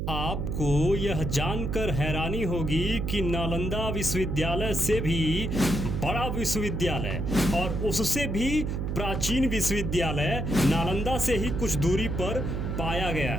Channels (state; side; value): noise; right; hum, 2 dB below the sound